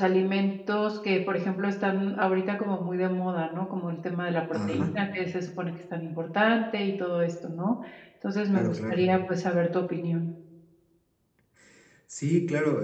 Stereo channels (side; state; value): both; identical; correlation 1.00